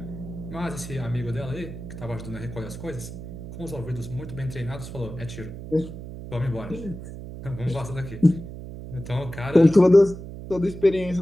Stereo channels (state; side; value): noise; right; hum, 11 dB below the sound